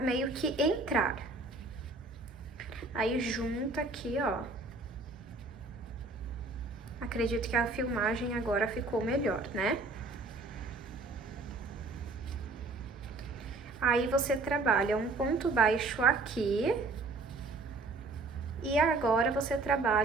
que entrar. Aí, junta aqui, ó. Acredito que a filmagem agora ficou melhor, né? Aí, você trabalha um ponto baixo aqui. E agora, você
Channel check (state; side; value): quieter; left; 3.4 dB